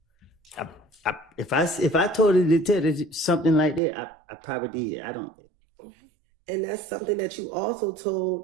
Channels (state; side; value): drops out; left; at 3.8 s